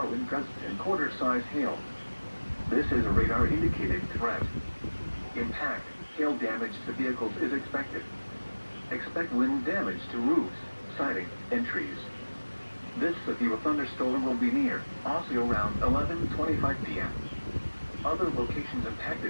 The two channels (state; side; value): inverted; both; correlation -1.00